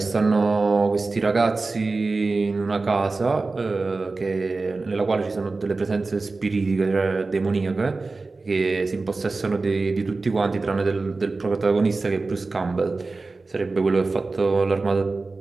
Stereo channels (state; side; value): quieter; left; 3.7 dB